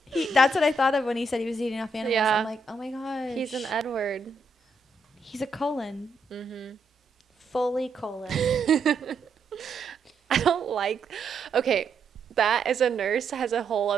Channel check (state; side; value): quieter; left; 3.0 dB